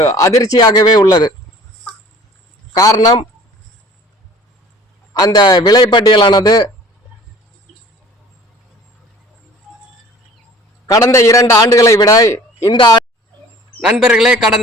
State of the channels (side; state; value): both; normal; correlation 0.49